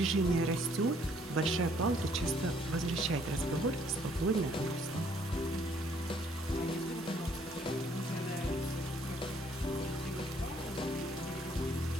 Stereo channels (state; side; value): normal; both; correlation 0.64